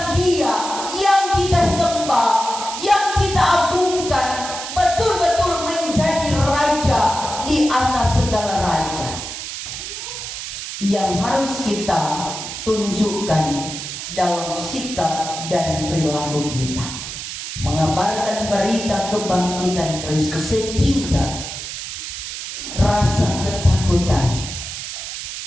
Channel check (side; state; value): right; noise; hiss, 7 dB below the sound